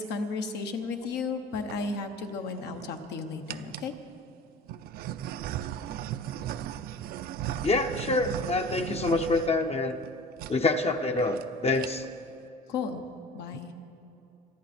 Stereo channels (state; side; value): normal; both; correlation 0.40